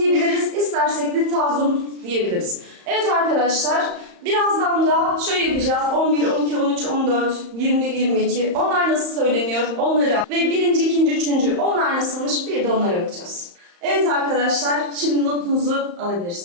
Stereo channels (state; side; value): late; left; 35 ms